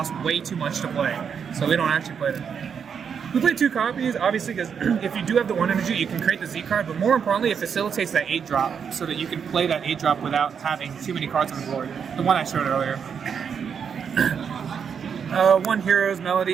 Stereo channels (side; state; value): left; quieter; 7.0 dB